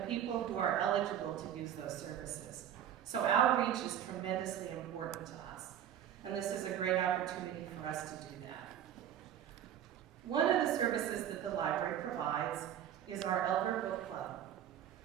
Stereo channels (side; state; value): left; quieter; 10.2 dB